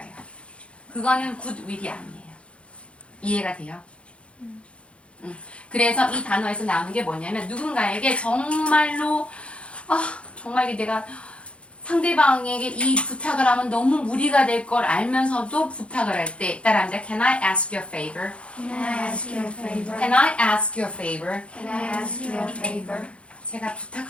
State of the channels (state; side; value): late; right; 0.060 ms